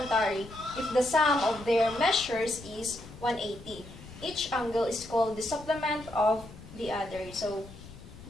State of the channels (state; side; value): noise; left; rumble, 17 dB below the sound